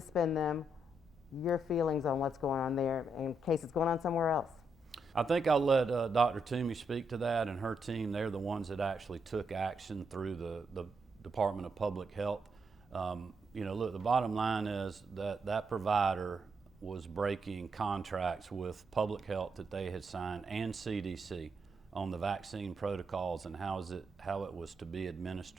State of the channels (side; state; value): both; normal; correlation 0.80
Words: them. Your feelings on what's going on there in case it's going on somewhere else? I think I'll let Dr. Toomey speak to that, and her team. They're the ones that actually took action through the Department of Public Health. You know, look, the bottom line is that provider was breaking contracts with public health that they had signed and CDC on the vaccine protocols and how it was to be